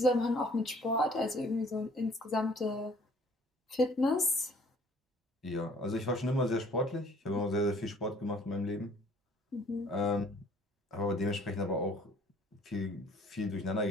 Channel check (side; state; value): both; normal; correlation 0.56